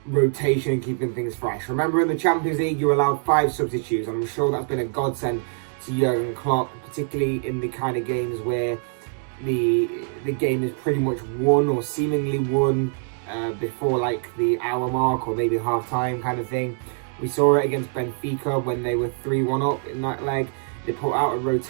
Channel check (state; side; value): silent; left; 63 dB below the other